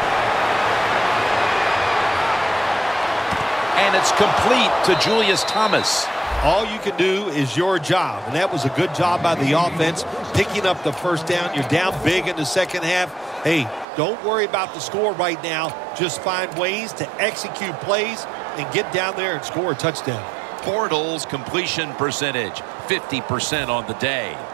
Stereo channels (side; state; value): left; drops out; at 13.9 s